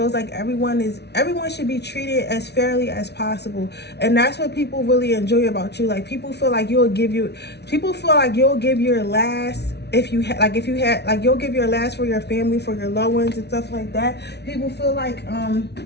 like everyone should be treated as fairly as possible, and that's what people really enjoy about you. Like people feel like you'll give your last. If you'll give your last for your family, for your loved ones and stuff like that. People feel like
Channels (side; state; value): right; late; 0.49 ms